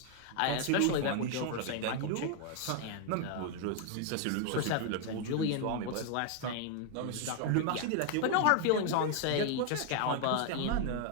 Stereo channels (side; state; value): both; different; correlation 0.00